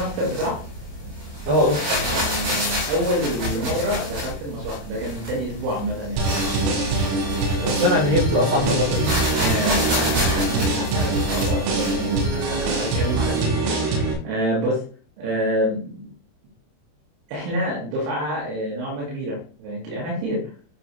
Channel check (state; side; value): late; left; 27 ms